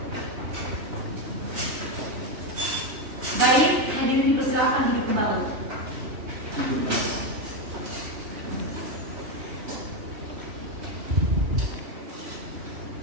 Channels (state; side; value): late; left; 3.1 ms